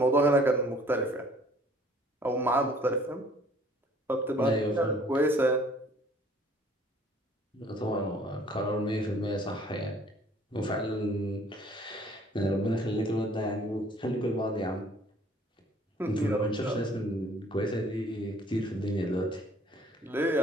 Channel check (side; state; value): both; normal; correlation 0.56